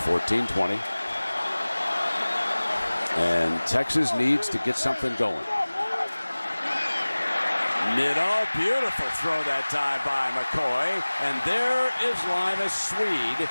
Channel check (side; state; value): both; inverted; correlation -1.00